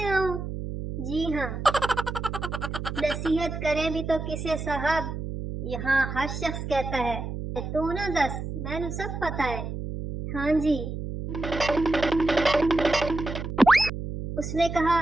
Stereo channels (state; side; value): noise; right; hum, 6 dB below the sound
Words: आऊँ। जी हाँ, नसीहत करें भी तो किसे साहब, यहाँ हर शख्स कहता है तू ना दस, मैंने सब पता है। हाँ जी, उसने कहा